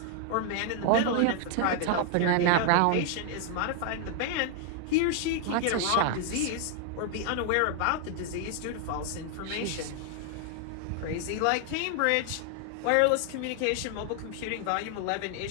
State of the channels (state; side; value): different; both; correlation 0.00